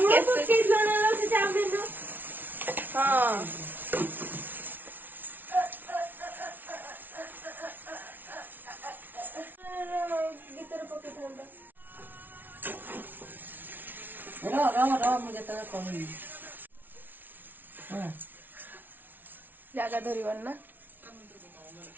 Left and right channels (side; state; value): left; late; 0.088 ms